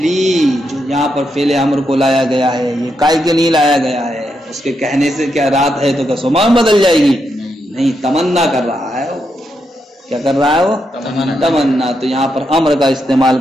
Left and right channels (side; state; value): both; normal; correlation 0.82